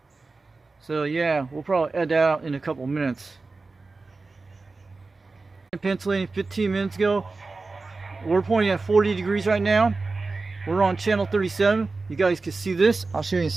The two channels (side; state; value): left; quieter; 3.8 dB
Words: So yeah, we'll probably edit that out in a couple minutes. In Pennsylvania, 15 minutes ago, we're pointing at 40 degrees right now. We're on channel 37. You guys can see this. I'll show you in a